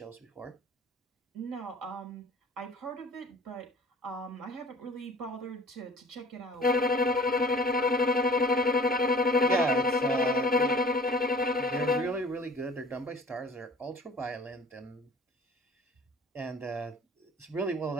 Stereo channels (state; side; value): normal; both; correlation 0.48